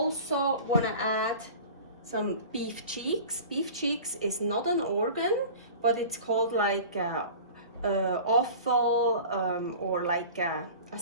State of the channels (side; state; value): both; inverted; correlation -0.39